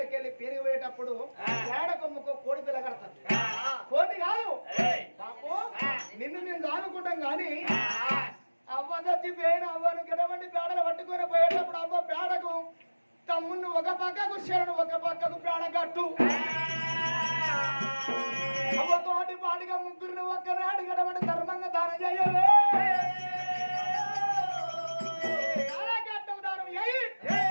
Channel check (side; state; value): both; inverted; correlation -1.00